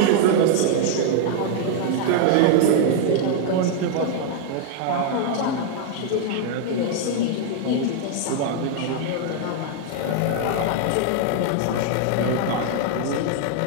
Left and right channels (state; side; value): different; both; correlation 0.00